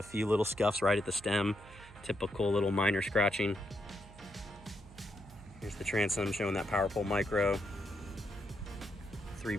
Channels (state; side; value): noise; right; hum, 19 dB below the sound